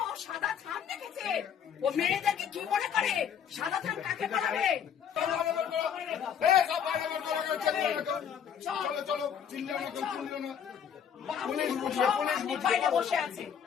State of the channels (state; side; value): quieter; right; 8.2 dB